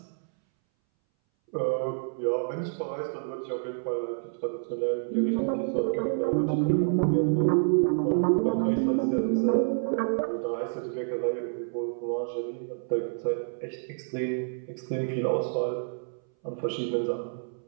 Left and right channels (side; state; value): left; silent; 59 dB below the other